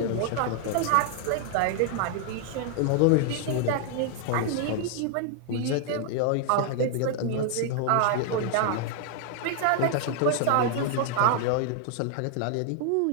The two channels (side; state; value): both; different; correlation 0.00